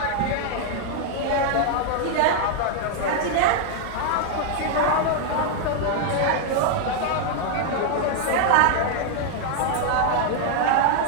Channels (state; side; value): different; both; correlation 0.00